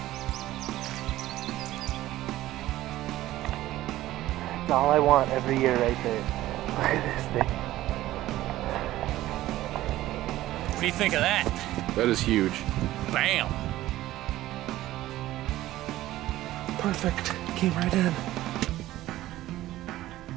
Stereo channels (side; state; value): left; quieter; 15.3 dB